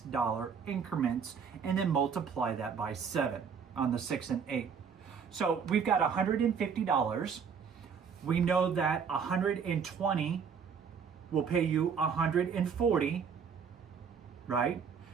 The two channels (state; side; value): quieter; left; 6.5 dB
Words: increments and then multiply that by 7 on the 6 and 8. So we've got $150. We know that 120 will pay you 140, right?